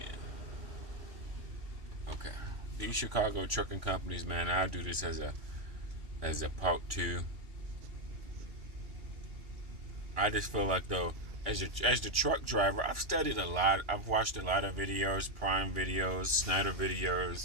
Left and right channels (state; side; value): late; left; 2.8 ms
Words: Okay. These Chicago trucking companies, man, I do this as a part two. I just feel like though, as the truck driver, I've studied a lot. I've watched a lot of videos, Prime videos, Snyder